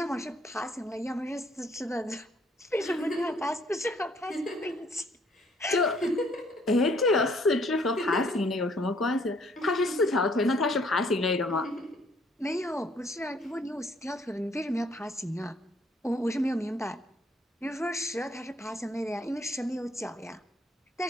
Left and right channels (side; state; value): both; normal; correlation 0.64